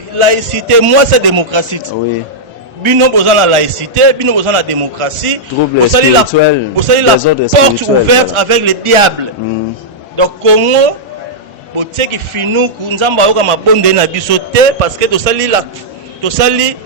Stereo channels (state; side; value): normal; both; correlation -0.08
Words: moi c'est démocratie. Bino besoin la laïcité, bino besoin la démocratie, bosali la porte ouverte avec le diable. Donc Congo, botie ki finou ku nzamba yoka mabonde na biso te parce que tosali la